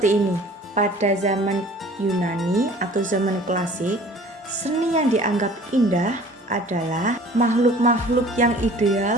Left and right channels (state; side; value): normal; both; correlation 0.49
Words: ini, pada zaman Yunani atau zaman klasik, seni yang dianggap indah adalah makhluk-makhluk yang